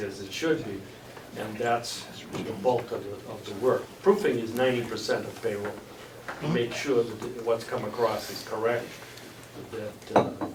it should be, and that's the bulk of the work. Proofing is 90% of payroll, to make sure that what's come across is correct,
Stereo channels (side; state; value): both; identical; correlation 1.00